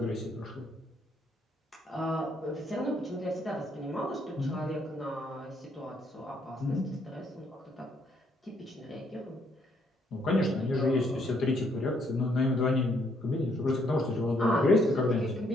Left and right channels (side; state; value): both; normal; correlation 0.70